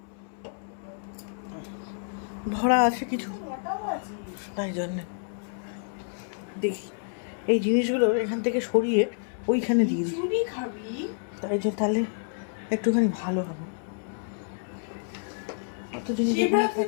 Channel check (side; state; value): right; silent; 59 dB below the other